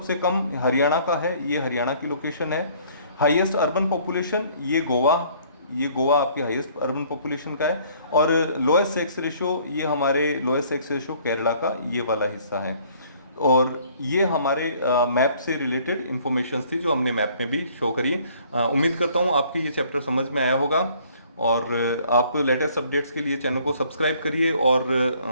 कम हरियाणा का है, ये हरियाणा की लोकेशन है। हाईएस्ट अर्बन पॉपुलेशन ये गोवा आपकी हाईएस्ट अर्बन पॉपुलेशन का है। और लोएस्ट सेक्स रेशियो ये हमारे लोएस्ट सेक्स रेशियो केरला का ये वाला हिस्सा है। और ये हमारे मैप से रिलेटेड इंफॉर्मेशन थी जो हमने मैप में भी शो करी। उम्मीद करता हूँ आपको ये चैप्टर समझ में आया होगा और आप लेटेस्ट अपडेट्स के लिए चैनल को सब्सक्राइब करिए और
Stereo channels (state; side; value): inverted; both; correlation -0.58